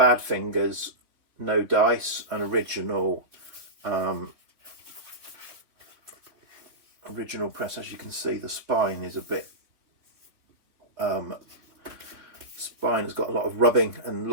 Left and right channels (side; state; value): left; late; 3.7 ms